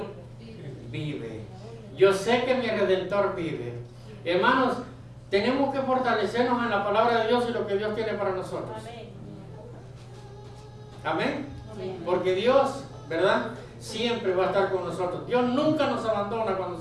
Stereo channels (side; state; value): both; identical; correlation 1.00